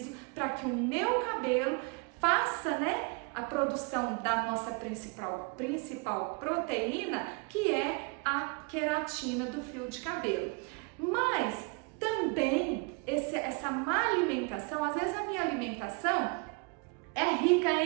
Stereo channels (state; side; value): quieter; left; 32.6 dB